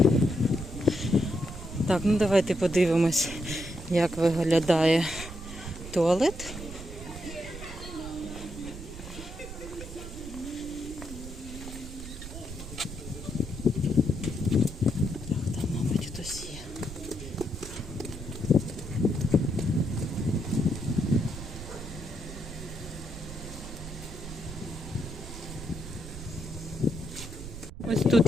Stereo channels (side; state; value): right; noise; rumble, 11 dB below the sound